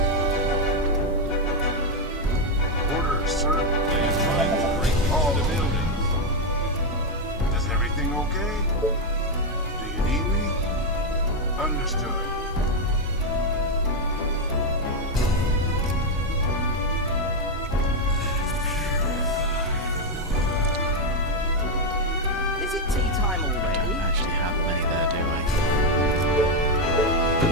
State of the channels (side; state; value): both; normal; correlation 0.03